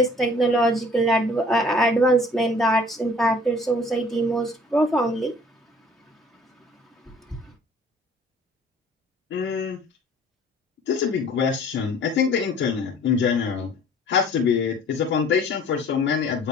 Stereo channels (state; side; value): normal; both; correlation 0.52